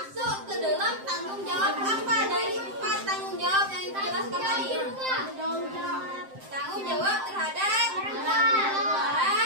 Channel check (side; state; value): left; late; 7.7 ms